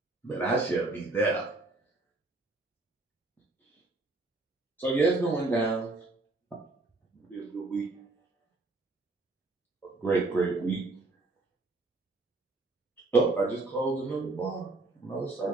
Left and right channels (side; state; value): left; quieter; 3.1 dB